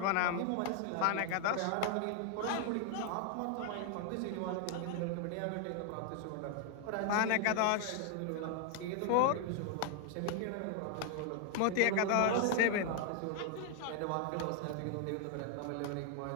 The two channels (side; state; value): both; different; correlation 0.00